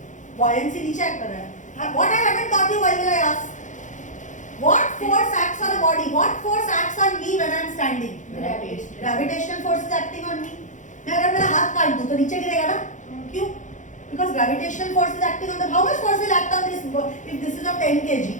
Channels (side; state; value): right; late; 0.36 ms